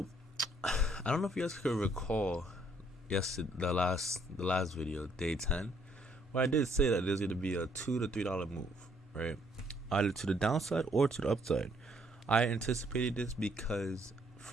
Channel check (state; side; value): normal; both; correlation 0.67